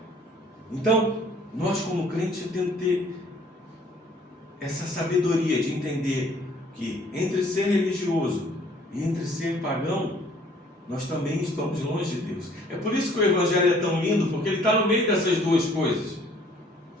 Então, nós como crentes temos que ter essa sabedoria de entender que entre ser religioso e entre ser pagão, nós também estamos longe de Deus. É por isso que o Evangelho é tão lindo, porque ele está no meio dessas duas coisas.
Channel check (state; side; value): normal; both; correlation 0.58